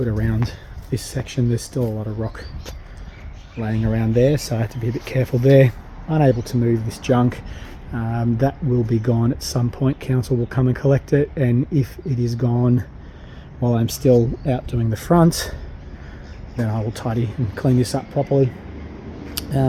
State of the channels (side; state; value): both; identical; correlation 1.00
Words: around this section. There's still a lot of rock laying around there, so I had to be a bit careful there. Unable to move this junk. That will be gone at some point. Council will come and collect it, and if it is gone while I'm still out doing the front, then I will tidy and clean this up properly.